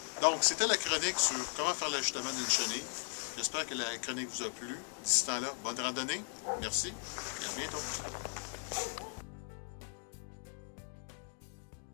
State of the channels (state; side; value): silent; right; 53 dB below the other